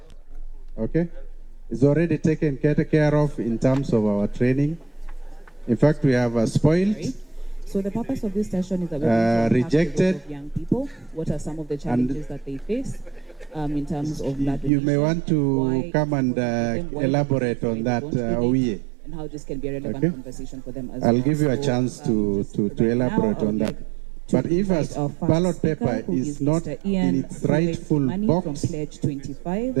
Okay? It's already taken care of in terms of our training. In fact, we have spoiled. So the purpose of this session is that we're rejected of young people. What are some of the challenges that they face? In terms of blood you may want to come and elaborate on that, Owie. And how this can be a relevant conversation for them as I'll well. give you a chance to elaborate on that. But if a ballot paper is not in its rightful box,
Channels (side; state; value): left; drops out; at 14.7 s